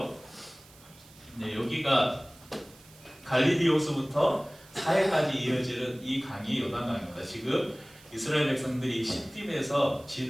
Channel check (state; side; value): noise; right; hiss, 24 dB below the sound